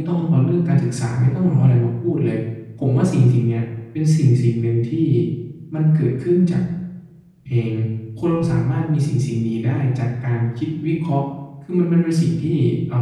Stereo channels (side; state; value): both; identical; correlation 1.00